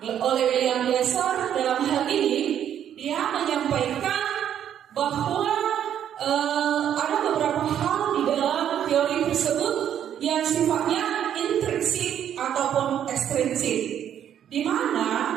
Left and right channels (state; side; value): quieter; left; 9.8 dB